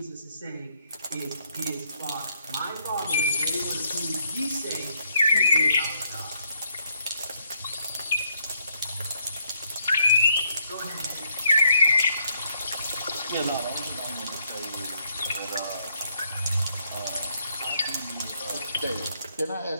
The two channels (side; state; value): both; inverted; correlation -0.71